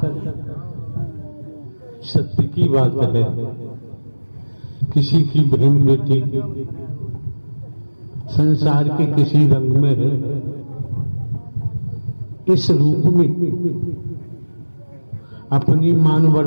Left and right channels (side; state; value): both; inverted; correlation -1.00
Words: सत्य की बात है, किसी की बहन बेटी संसार के किसी रंग में है, इस रूप में अपनी मान